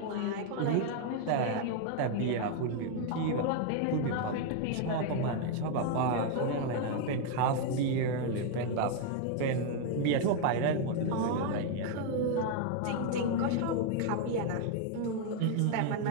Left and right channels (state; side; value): different; both; correlation 0.00